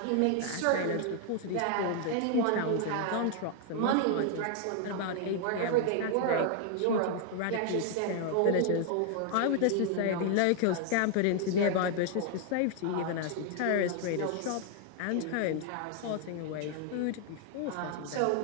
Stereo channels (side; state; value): both; different; correlation 0.00